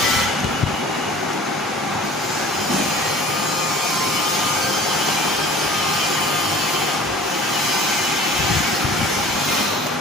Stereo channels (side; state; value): both; normal; correlation 0.46